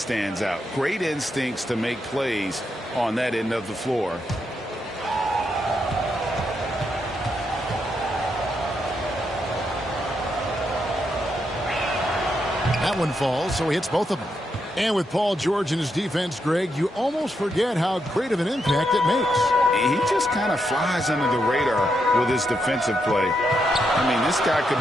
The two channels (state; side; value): normal; both; correlation 0.81